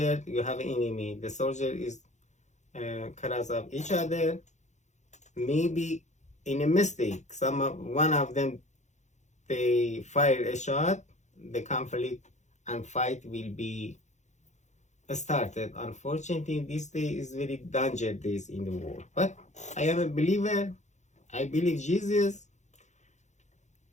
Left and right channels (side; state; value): right; late; 0.34 ms